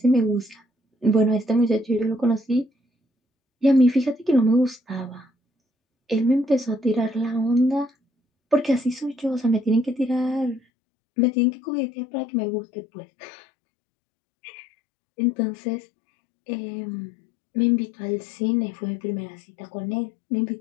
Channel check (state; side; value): drops out; right; at 10.6 s